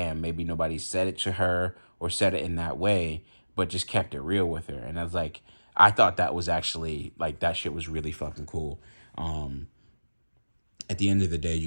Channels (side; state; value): both; inverted; correlation -1.00